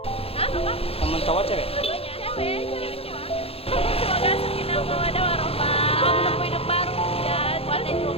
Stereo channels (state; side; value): late; right; 0.28 ms